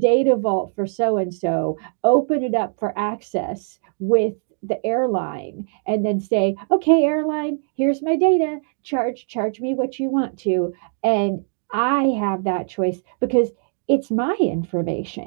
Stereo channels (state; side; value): silent; left; digital silence